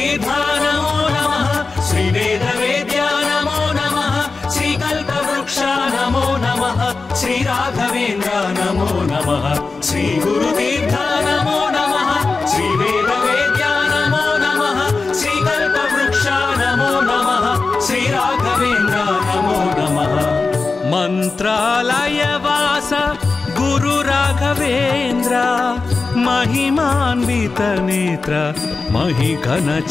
నమో నమః శ్రీ వేద వేద్య నమో నమః శ్రీ కల్పవృక్ష నమో నమః శ్రీ రాఘవేంద్ర నమో నమః శ్రీ గురుతీర్థ నమో నమః శ్రీ వేద వేద్య నమో నమః శ్రీ కల్పవృక్ష నమో నమః శ్రీ రాఘవేంద్ర నమో నమః మంత్రాలయవాస గురు రాఘవేంద్ర महिमान्वित नेत्र महिघन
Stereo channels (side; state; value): right; quieter; 4.1 dB